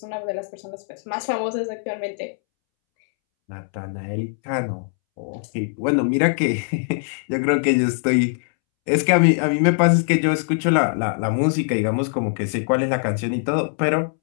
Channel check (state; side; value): silent; right; 64 dB below the other